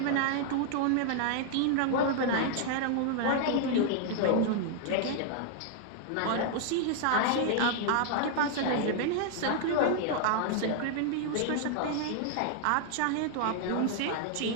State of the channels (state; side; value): different; both; correlation -0.01